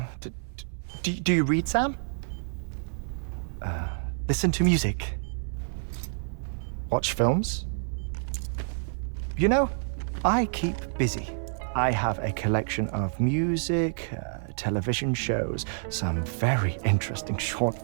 Do you read, Sam? Listen to music. Watch films? You know, I keep busy. I have a collection of music, television shows, some very interesting short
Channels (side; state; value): left; silent; 59 dB below the other